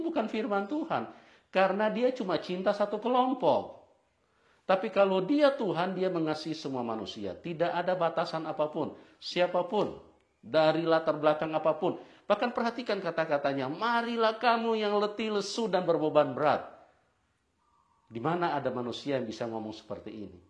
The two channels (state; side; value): identical; both; correlation 1.00